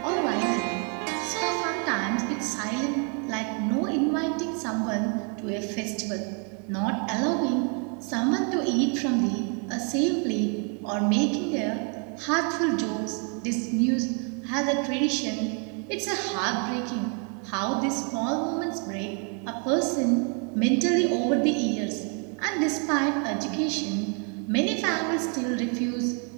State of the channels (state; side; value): quieter; left; 39.2 dB